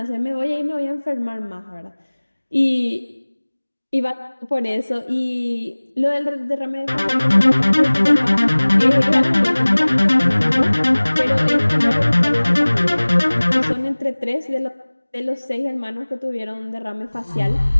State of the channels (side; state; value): both; inverted; correlation -1.00